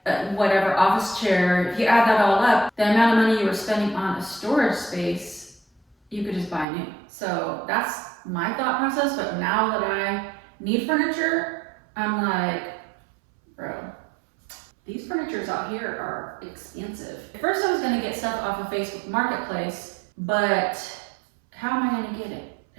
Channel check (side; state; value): left; drops out; at 6.7 s